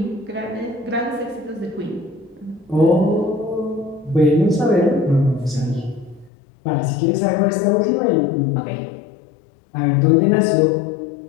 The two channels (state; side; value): drops out; right; at 6.3 s